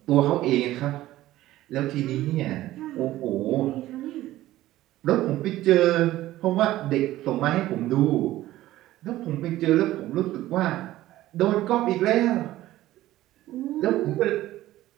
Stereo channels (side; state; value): left; quieter; 15.3 dB